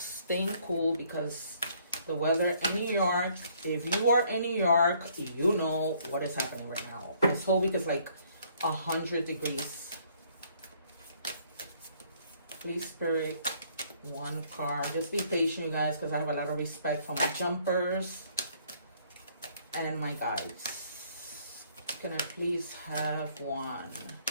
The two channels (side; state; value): both; inverted; correlation -0.64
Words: cool, because the weather in New York, if you are in New York, you know what is happening right now. This whole week is like 100 degrees. Please, Spirit, one card. Just be patient, you guys, because I have a lot of respect for my jumpers and my guides. Can I please have one?